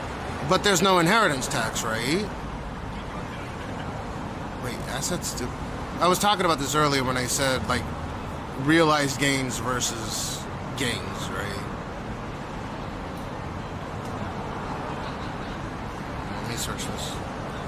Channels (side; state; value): both; identical; correlation 1.00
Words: But there's no inheritance tax, right? Wait, assets do... I was talking about this earlier when I said, like, realized gains versus gains, right? Let me search this.